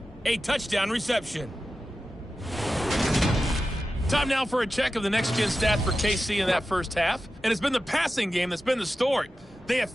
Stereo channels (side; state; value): both; normal; correlation 0.93